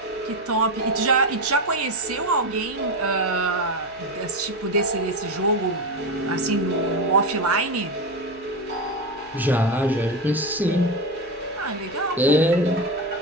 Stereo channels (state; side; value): noise; right; hum, 28 dB below the sound